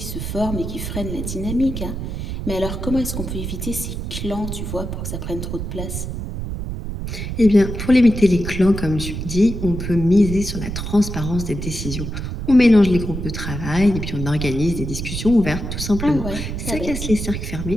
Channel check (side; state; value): right; noise; rumble, 5 dB below the sound